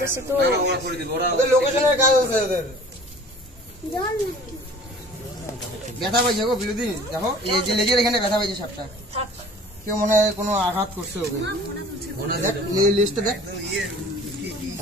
আছে তো। ওদের লোকেশনের কাজ আছে ওদের। ব্যথা পাইছে গো বিলুদি, দেখো এই যে লেজের এখানে ব্যথা পাইছে সাপটা। কেউ মনে হয় কোনো আঘাত করছে ওকে। দেখ লিস্টটা দেখ।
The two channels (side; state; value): both; normal; correlation 0.47